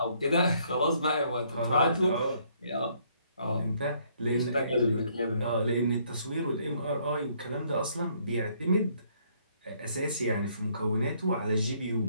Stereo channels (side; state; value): both; inverted; correlation -0.67